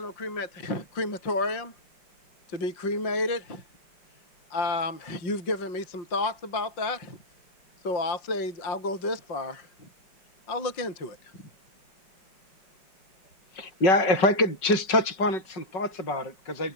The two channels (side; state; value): right; late; 5.3 ms